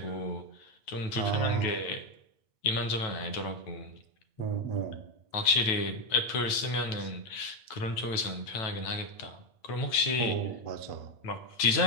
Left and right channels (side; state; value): right; late; 9.1 ms